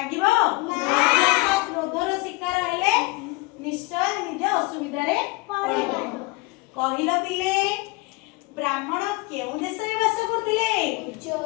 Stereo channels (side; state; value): right; quieter; 23.7 dB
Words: क्रोधर शिकार हेले निश्चय निज असुविधा रे पड़िबो। कहिलो पिले ब्राह्मण केउ देश रे वास करथिले